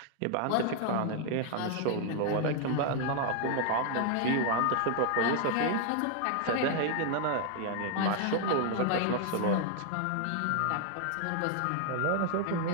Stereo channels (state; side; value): different; both; correlation 0.00